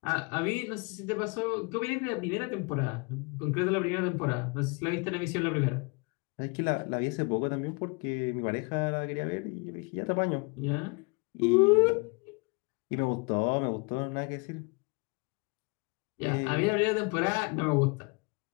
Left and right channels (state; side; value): quieter; right; 30.9 dB